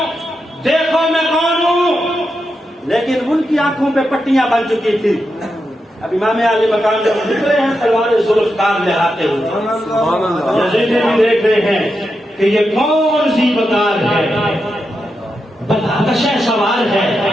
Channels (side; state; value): both; normal; correlation 0.87